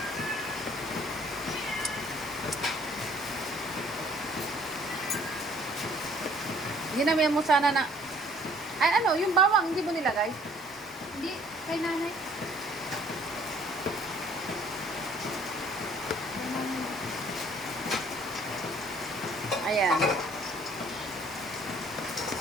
Ginamihan mo sana na... Ay, yung bawang, hindi mo nilagay? Hindi. Kay nanay. Ayan.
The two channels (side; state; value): both; normal; correlation 0.58